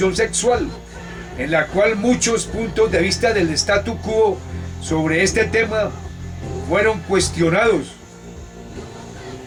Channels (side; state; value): both; identical; correlation 1.00